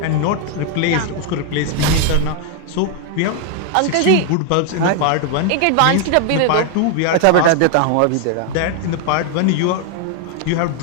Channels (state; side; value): different; both; correlation 0.00